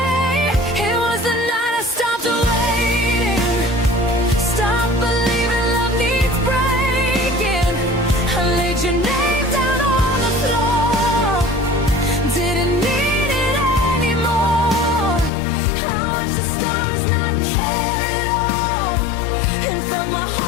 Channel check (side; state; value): right; drops out; at 15.3 s